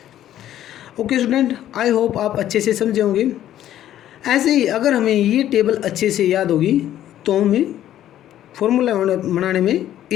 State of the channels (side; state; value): right; quieter; 12.1 dB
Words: Okay student, I hope आप अच्छे से समझे होंगे। ऐसे ही अगर हमें ये टेबल अच्छे से याद होगी तो हमें फार्मूला बनाने में